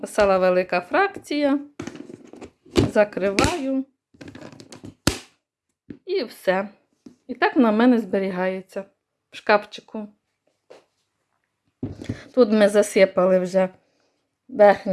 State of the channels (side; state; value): both; identical; correlation 1.00